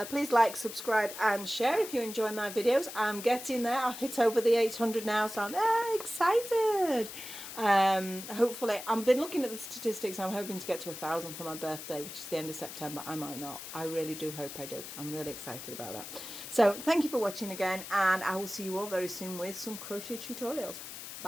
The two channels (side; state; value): left; noise; hiss, 10 dB below the sound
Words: Please like, subscribe and share if you enjoy my videos. I'm getting there. I've hit over the 800 now, so I'm very excited. Hopefully, I've been looking at the statistics. I'm hoping to get to 1,000 for my birthday, which is the end of September. I might not. I really do hope I do. I'm really excited about that. So thank you for watching again, and I will see you all very soon with some crochet tutorials.